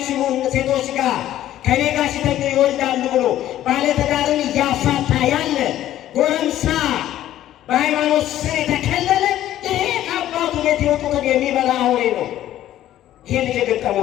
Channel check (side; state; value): right; quieter; 12.9 dB